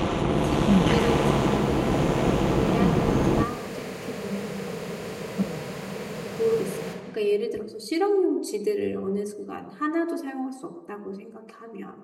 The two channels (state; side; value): identical; both; correlation 1.00